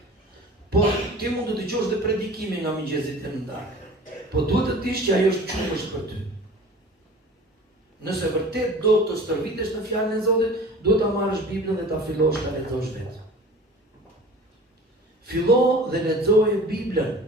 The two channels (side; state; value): both; normal; correlation 0.42